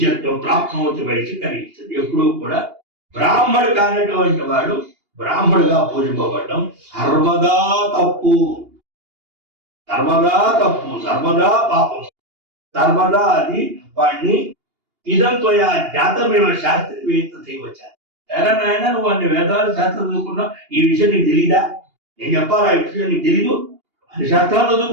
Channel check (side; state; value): left; late; 2.8 ms